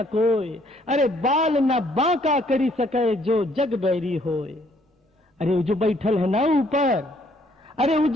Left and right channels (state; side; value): normal; both; correlation 0.66